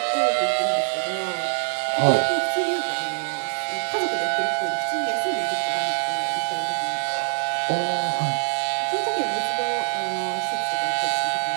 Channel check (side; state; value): left; silent; digital silence